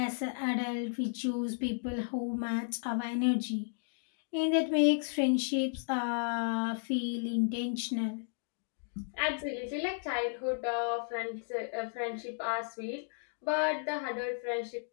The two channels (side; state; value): right; silent; digital silence